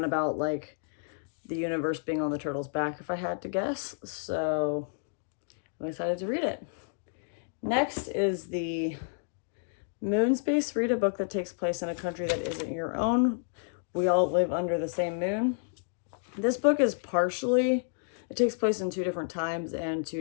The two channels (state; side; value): silent; right; digital silence